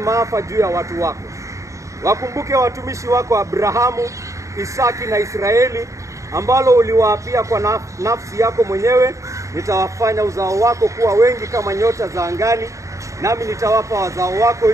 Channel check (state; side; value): late; left; 0.15 ms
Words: juu ya watu wako. Wakumbuke watumishi wako Abrahamu, Isaki na Israeli, ambalo uliwaapia kwa nafsi yako mwenyewe, nitawafanya uzao wako kuwa wengi kama nyota za angani, nami nitawapa wazao wako